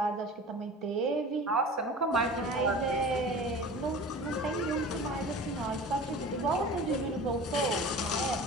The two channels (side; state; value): both; normal; correlation 0.38